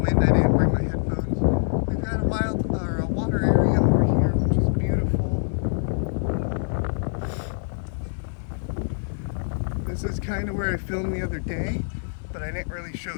wind, I didn't bring my headphones. We've got a water area over here which is beautiful. This is kind of where I filmed the other day, but I didn't really show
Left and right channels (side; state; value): right; silent; 59 dB below the other